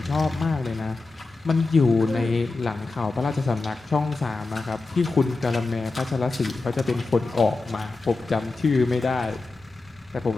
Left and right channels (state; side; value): quieter; right; 3.6 dB